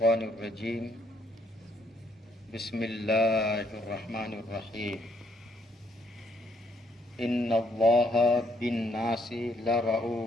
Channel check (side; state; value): both; normal; correlation 0.70